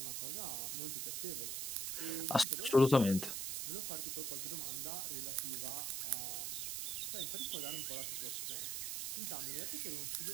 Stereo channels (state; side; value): noise; right; hiss, 1 dB below the sound